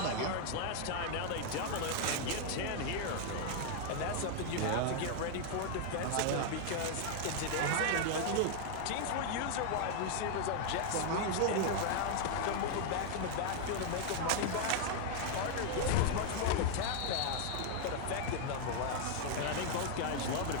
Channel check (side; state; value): both; different; correlation 0.00